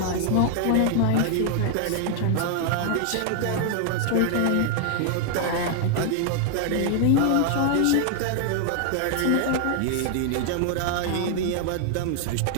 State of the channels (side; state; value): both; different; correlation 0.00